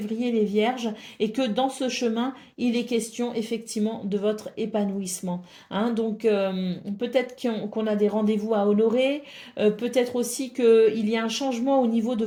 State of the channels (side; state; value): both; identical; correlation 1.00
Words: les Vierges, et que dans ce chemin, il est question effectivement de votre épanouissement. Hein. Donc peut-être qu'on a des rendez-vous à honorer, peut-être aussi qu'il y a un changement au niveau de